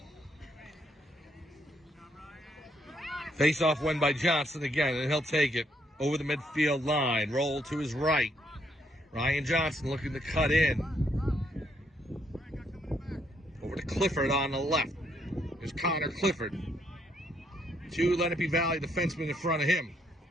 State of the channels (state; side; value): normal; both; correlation 0.73